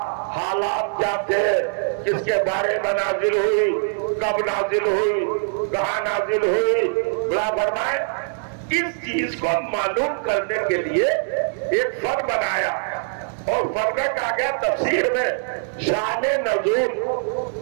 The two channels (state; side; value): silent; left; digital silence